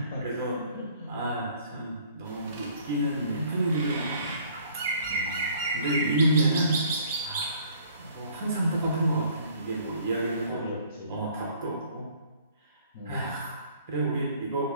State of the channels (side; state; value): both; inverted; correlation -0.57